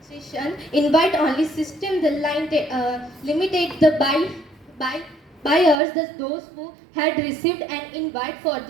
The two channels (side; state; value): left; drops out; at 5.8 s